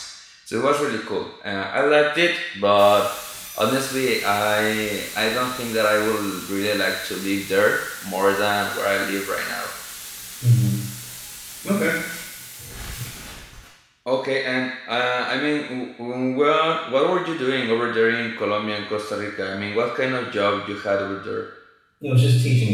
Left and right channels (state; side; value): identical; both; correlation 1.00